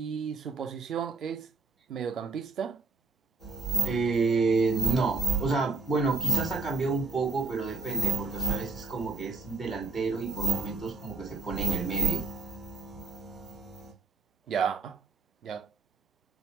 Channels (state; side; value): quieter; left; 4.1 dB